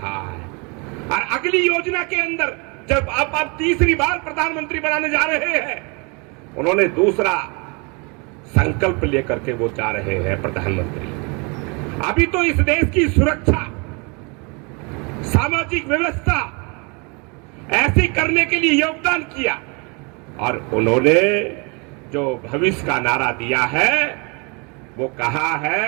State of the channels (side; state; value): left; quieter; 31.3 dB